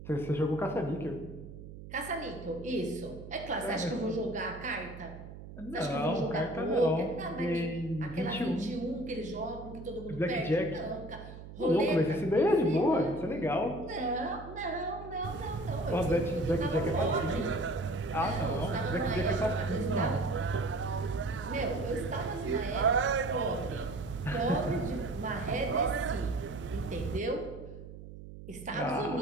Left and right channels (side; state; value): right; noise; hum, 13 dB below the sound